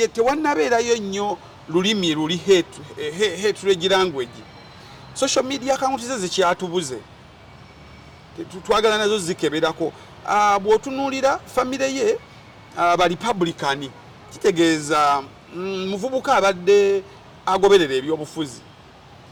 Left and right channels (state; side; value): identical; both; correlation 1.00